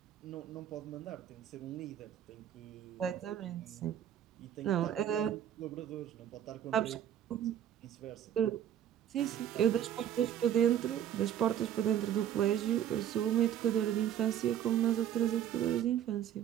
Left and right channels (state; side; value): quieter; left; 10.3 dB